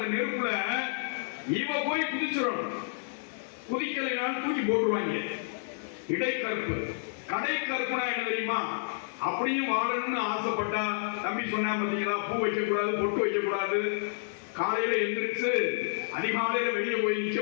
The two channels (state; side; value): silent; right; digital silence